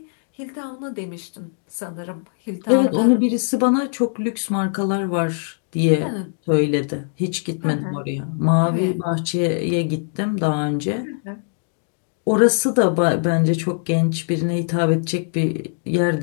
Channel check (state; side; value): silent; right; 65 dB below the other